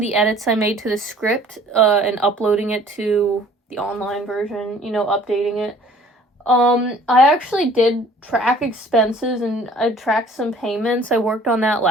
edits I made to the script, and uploading it to the online version, you know, updating it. I actually did track expenses, and I tracked some payments. I worked on that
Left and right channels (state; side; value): normal; both; correlation 0.53